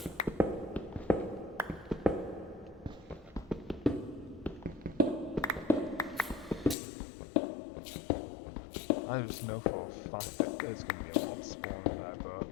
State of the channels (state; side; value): drops out; right; at 6.8 s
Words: I just know for a fact that there's going to be a mob spawning there,